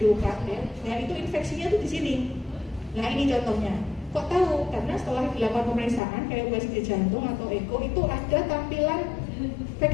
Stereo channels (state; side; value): drops out; right; at 6.0 s